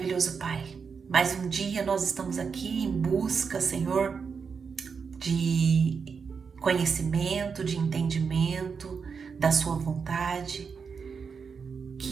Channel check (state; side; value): quieter; left; 5.8 dB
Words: Pai, mais um dia nós estamos aqui em busca, Senhor, de conhecimento, de entendimento da Sua vontade,